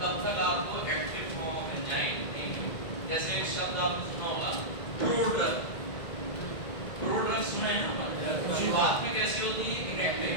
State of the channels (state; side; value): late; right; 2.0 ms